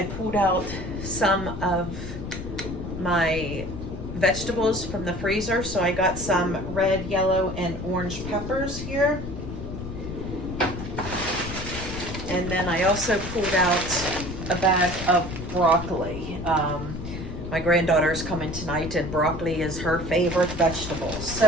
pulled out some of my vegetables from the freezer. So I got some red, yellow, and orange peppers here. And then I also pulled out a bag of broccoli. My granddaughter is coming tonight, and broccoli is her favorite vegetable.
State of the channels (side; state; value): left; noise; rumble, 8 dB below the sound